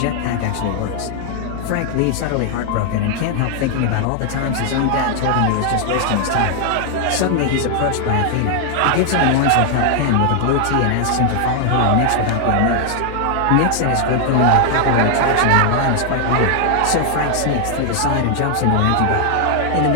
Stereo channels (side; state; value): both; different; correlation 0.00